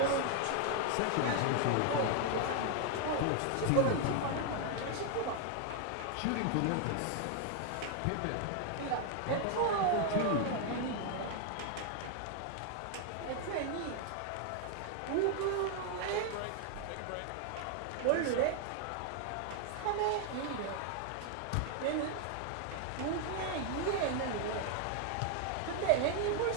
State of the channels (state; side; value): different; both; correlation 0.00